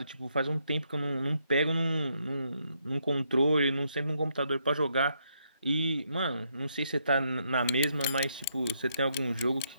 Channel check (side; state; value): both; inverted; correlation -0.75